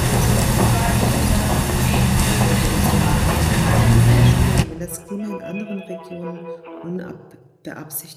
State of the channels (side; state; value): both; identical; correlation 1.00